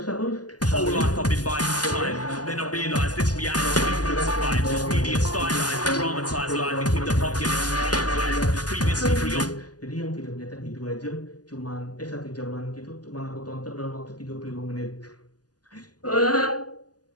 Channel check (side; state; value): right; late; 0.68 ms